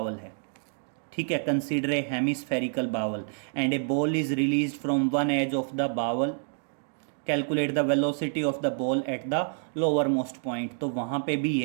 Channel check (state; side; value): silent; left; digital silence